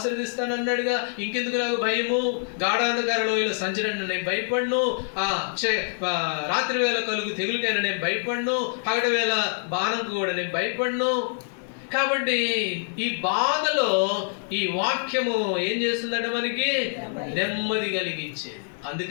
అన్నాడుగా, ఇంకెందుకు నాకు భయము? గాఢాంధకార లోయలో సంచరణ నేను భయపడను, రాత్రి వేళ కలుగు తెగులకైనా నేను భయపడను, పగటి వేళ బాణంకు కూడా నేను భయపడను. కాబట్టి ఈ బాధలో ఈ వాక్యము ఏం చేస్తుందంటే మనకి నెమ్మది కలిగించేది.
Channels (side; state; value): right; silent; digital silence